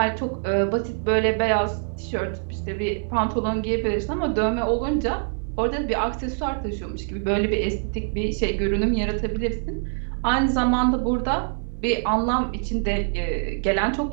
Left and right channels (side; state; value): left; silent; 62 dB below the other